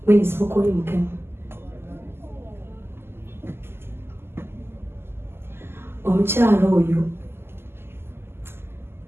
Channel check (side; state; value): left; late; 0.12 ms